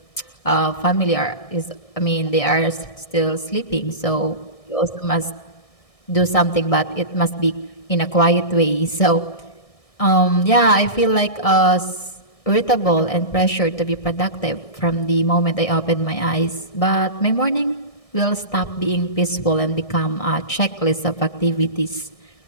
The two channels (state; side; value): late; right; 1.6 ms